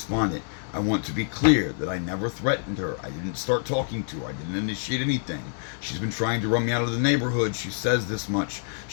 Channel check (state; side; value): silent; right; digital silence